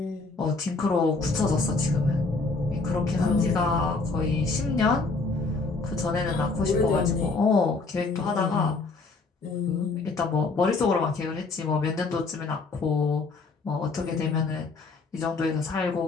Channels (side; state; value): right; quieter; 3.8 dB